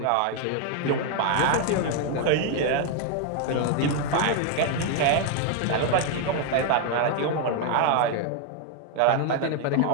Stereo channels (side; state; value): both; different; correlation 0.00